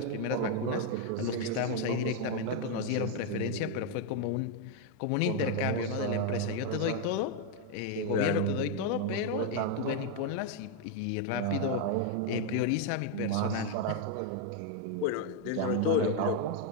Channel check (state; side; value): different; both; correlation 0.01